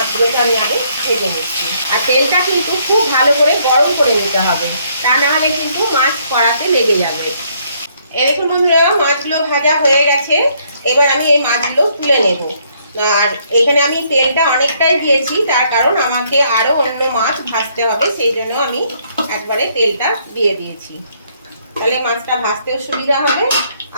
আমি আগে ভেজে নিচ্ছি। আর তেলটা কিন্তু খুব ভালো করে গরম করে নিতে হবে, তা না হলে কিন্তু মাছ কড়াতে লেগে যাবে। এরকম বন্ধুরা, মাছগুলো ভাজা হয়ে গেছে। এবার আমি এই মাছগুলো তুলে নেব। আর এখানে আমি তেলটা অনেকটাই দিয়েছি, তার কারণ আমাকে আরো অন্য মাছ ভাজতে হবে, সেই জন্য আমি একবারে তেলটা দিয়ে দিয়েছি। তাহলে মাছটা ভাজতেও সুবিধা হবে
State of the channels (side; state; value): both; inverted; correlation -0.68